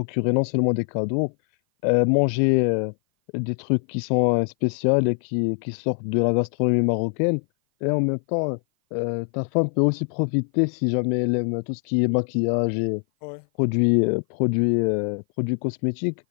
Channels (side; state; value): right; silent; 56 dB below the other